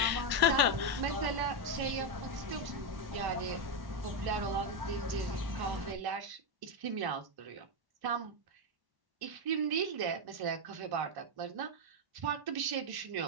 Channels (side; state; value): left; late; 1.1 ms